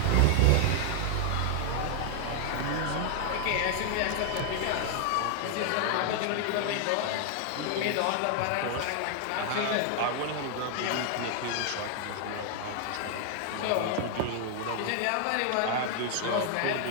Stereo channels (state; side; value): different; both; correlation 0.00